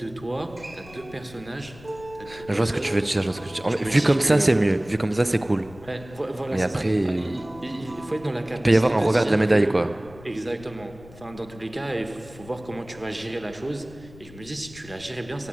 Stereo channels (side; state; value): left; noise; rumble, 20 dB below the sound